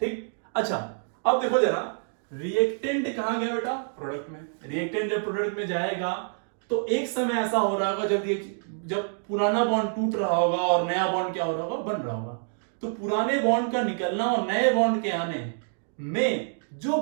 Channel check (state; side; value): silent; left; digital silence